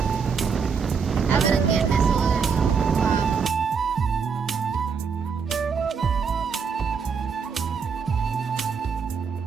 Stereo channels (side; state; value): left; quieter; 5.9 dB